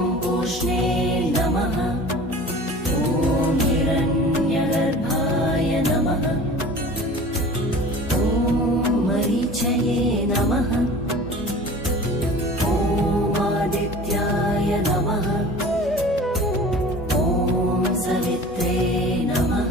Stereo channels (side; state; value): both; normal; correlation 0.41